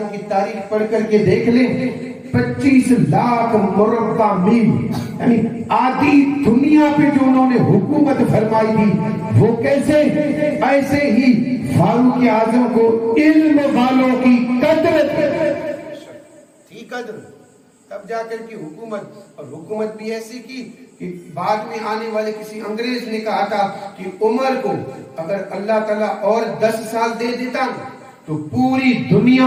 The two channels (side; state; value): both; identical; correlation 1.00